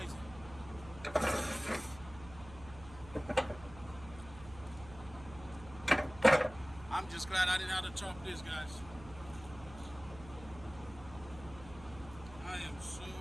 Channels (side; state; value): right; noise; hum, 16 dB below the sound